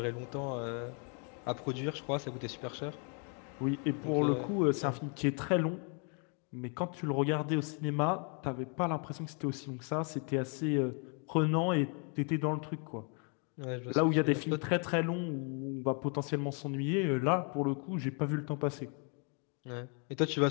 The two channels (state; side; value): quieter; right; 39.0 dB